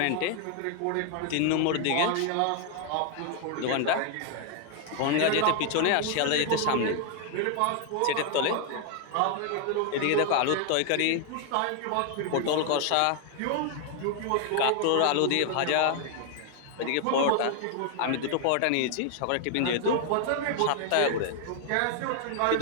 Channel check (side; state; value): both; different; correlation 0.00